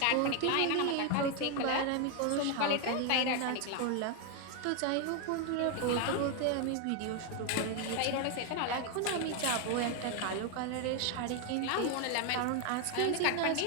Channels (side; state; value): both; different; correlation 0.01